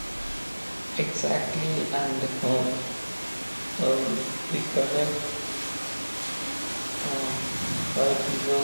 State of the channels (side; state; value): both; inverted; correlation -1.00